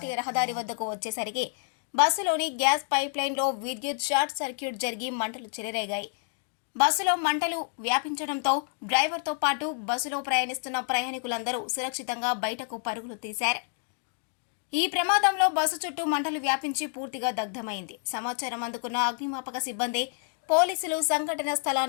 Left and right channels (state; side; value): silent; right; 56 dB below the other